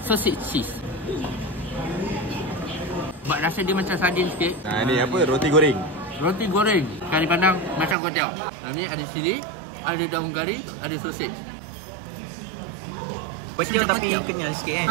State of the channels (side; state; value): left; drops out; at 8.0 s